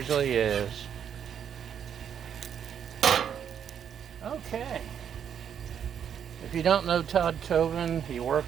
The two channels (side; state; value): left; quieter; 8.4 dB